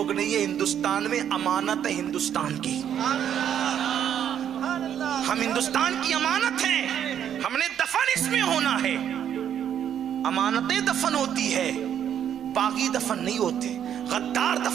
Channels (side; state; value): left; quieter; 9.4 dB